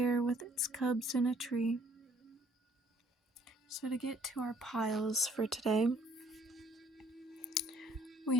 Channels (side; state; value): both; normal; correlation 0.60